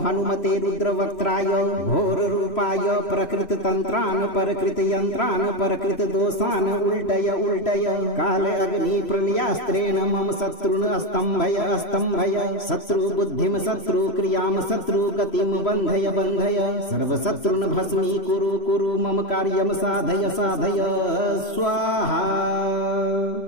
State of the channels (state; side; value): late; right; 3.0 ms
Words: हनुमते रुद्रवक्त्राय घोर रूपाय प्रकृत तंत्रान परकृत यंत्रान परकृत दोषान उल्टय उल्टय काल अग्नि प्रलयास्त्रेण मम शत्रुन स्तंभय शत्रु बुद्धिम शत्रु क्रियाम शत्रु गतिम बंधय बंधय सर्व शत्रुन भस्मी कुरु कुरु मम कार्यम साधय साधय स्वाहा।